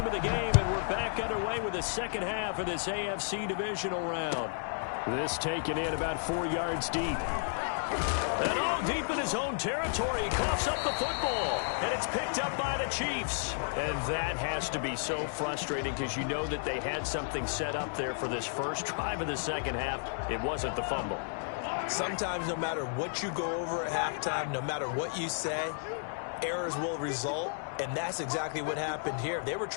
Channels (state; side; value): silent; right; digital silence